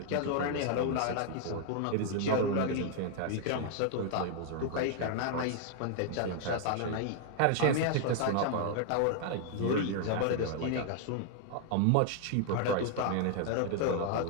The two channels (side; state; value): both; different; correlation 0.00